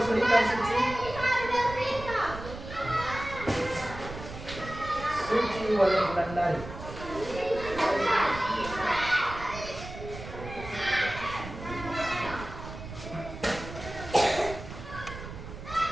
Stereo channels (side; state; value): right; noise; rumble, 11 dB below the sound